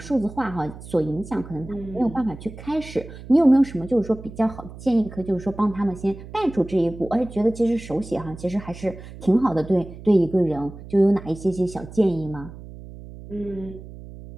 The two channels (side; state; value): right; noise; hum, 15 dB below the sound